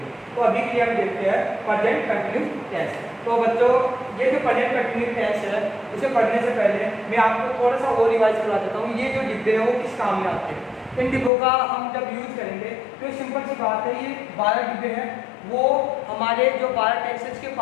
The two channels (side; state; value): right; drops out; at 11.3 s